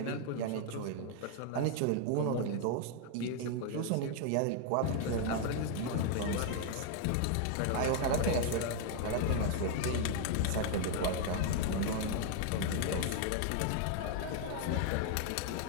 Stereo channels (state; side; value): different; both; correlation 0.00